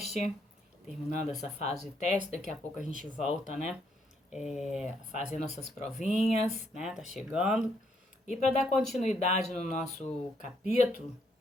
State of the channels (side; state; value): both; normal; correlation 0.73